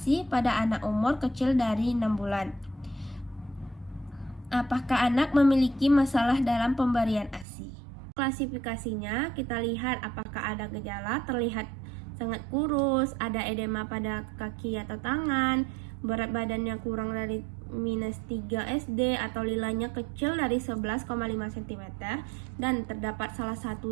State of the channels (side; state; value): left; drops out; at 7.5 s